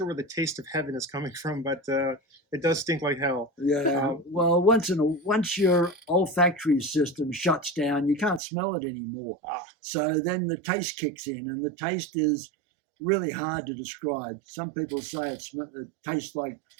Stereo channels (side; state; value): left; drops out; at 8.4 s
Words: where the taste of heaven is coming from, but it does stink like hell. Yeah. Well, once your olfactory system shuts down, you can't smell it anymore. So then the taste kicks in, and the taste is really hard to describe. Some people say it tastes like